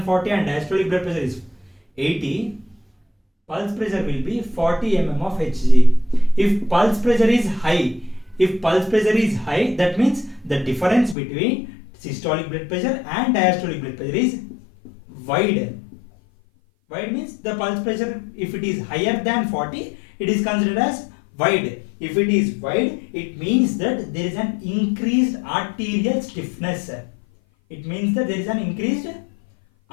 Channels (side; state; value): right; drops out; at 11.2 s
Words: and diastolic blood pressure is 80. Pulse pressure will be 40 mm of Hg. If pulse pressure is high, that means the difference between systolic blood pressure and diastolic blood pressure is wide. Wide means the pulse pressure, if it is higher than 40, it is considered as wide. If it is wide, it means that there is an increased arterial stiffness. It means that there is an increased